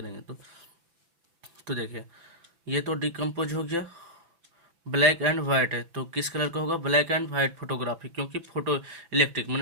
तो देखिए ये तो डिकम्पोज हो गया। ब्लैक एंड वाइट है तो किस कलर का होगा, ब्लैक एंड वाइट फोटोग्राफी, क्योंकि फोटो इलेक्ट्रिक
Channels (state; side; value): late; left; 6.0 ms